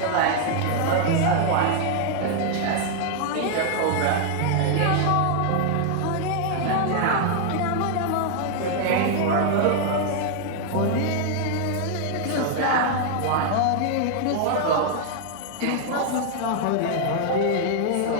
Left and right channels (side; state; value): both; different; correlation 0.00